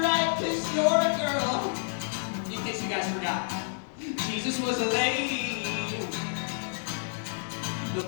right, 'cause you're a girl. In case you guys forgot, Jesus was a lady, the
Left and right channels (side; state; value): right; silent; digital silence